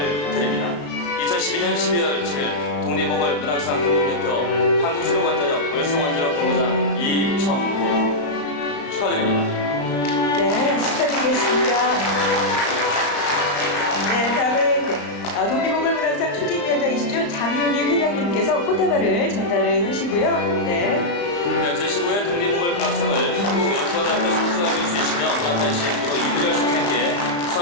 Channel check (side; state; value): right; late; 34 ms